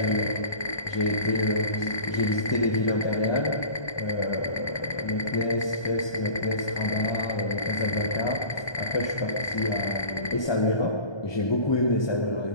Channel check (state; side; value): late; right; 1.2 ms